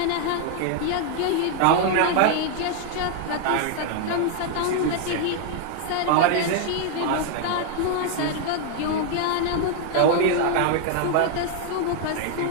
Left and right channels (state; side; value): different; both; correlation 0.00